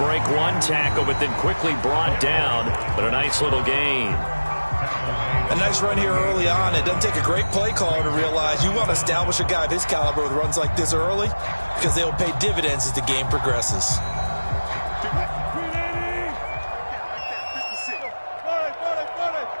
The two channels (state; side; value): inverted; both; correlation -1.00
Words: one tackle, but then quickly brought down. But a nice little gain. A nice run here early on. It doesn't take a great play caller to realize you want to establish a guy of his caliber with runs like this early because they will pay dividends as the game progresses.